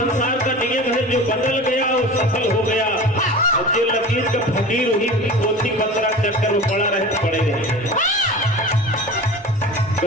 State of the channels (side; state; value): both; normal; correlation 0.35